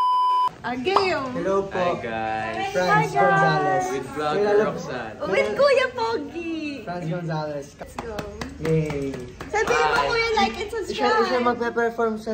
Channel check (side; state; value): both; identical; correlation 1.00